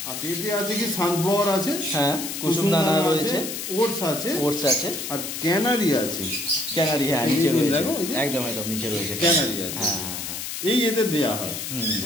আচ্ছা, এতে আছে কি সানফ্লাওয়ার আছে, হ্যাঁ কুসুম দানা রয়েছে, ওটস আছে, আর ক্যানারি আছে। ক্যানারি, হ্যাঁ নিচে রয়েছে, একদম একদম নিচে রয়েছে ক্যানারি আছে। হ্যাঁ হ্যাঁ, এই এদের দেয়া হয়।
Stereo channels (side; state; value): left; noise; hiss, 6 dB below the sound